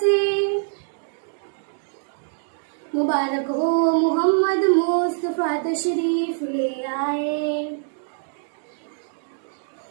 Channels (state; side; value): silent; left; digital silence